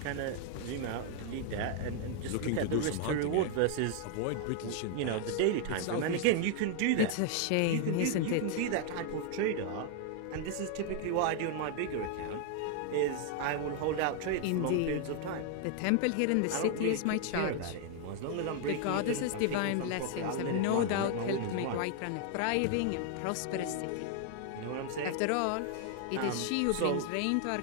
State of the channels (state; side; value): different; both; correlation 0.00